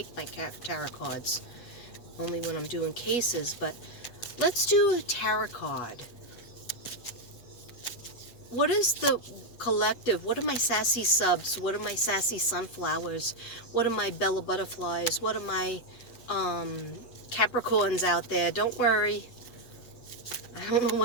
my tarot cards, only when I'm doing cases, but let's do a tarot card. What is the collective? What are my sassy subs? What are my sassy sunflowers? What are my Bella butterflies? What are my Capricorns out there? Don't worry. I don't know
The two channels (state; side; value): late; right; 8.2 ms